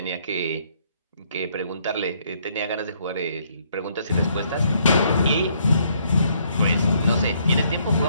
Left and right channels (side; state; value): both; inverted; correlation -0.69